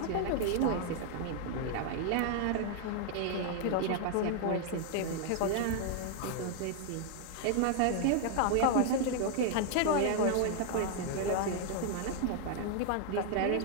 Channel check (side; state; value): both; different; correlation 0.00